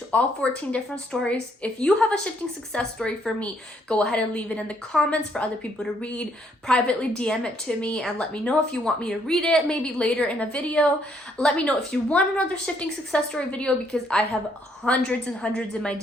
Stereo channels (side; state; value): both; normal; correlation 0.70